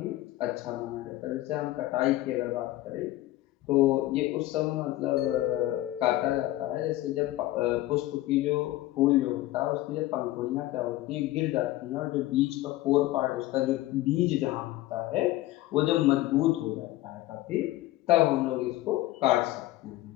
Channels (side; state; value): right; quieter; 16.4 dB